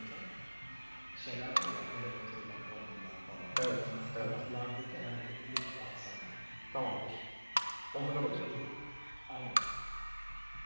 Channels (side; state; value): both; inverted; correlation -1.00